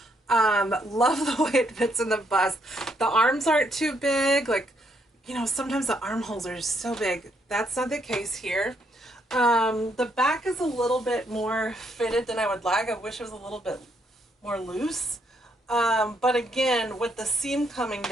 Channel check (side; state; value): both; normal; correlation 0.74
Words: Love the way it fits in the bust. The arms aren't too big. Like, you know, sometimes the armholes are so big. That's not the case here. The back is a little bit more fitted than I would like. I wish it was a little bit more loose. But again, with the seam coming